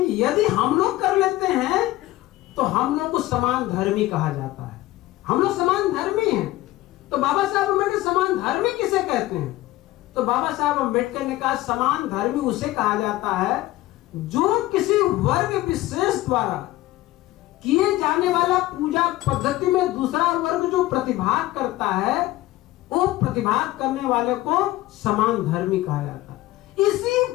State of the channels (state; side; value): quieter; right; 17.0 dB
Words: कि यदि हम लोग कर लेते हैं तो हम लोग को समान धर्मी कहा जाता है। हम लोग समान धर्मी हैं। तो बाबा साहब अम्बेडकर समान धर्मी किसे कहते हैं? तो बाबा साहब अम्बेडकर ने कहा समान धर्मी उसे कहा जाता है जो किसी वर्ग विशेष द्वारा किए जाने वाला पूजा पद्धति में दूसरा वर्ग जो प्रतिभाग करता है, वो प्रतिभाग करने वाले को समान धर्मी कहा जाता है। इसी